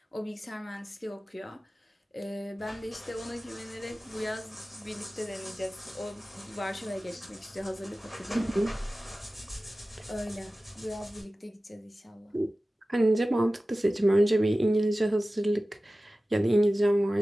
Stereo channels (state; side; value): normal; both; correlation 0.96